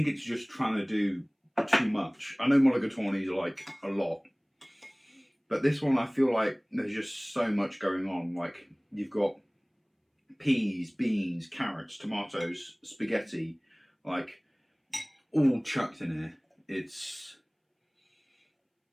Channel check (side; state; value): both; identical; correlation 1.00